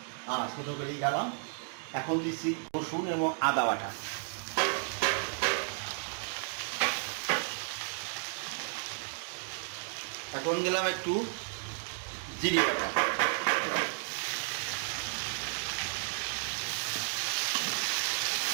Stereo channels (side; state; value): left; silent; 56 dB below the other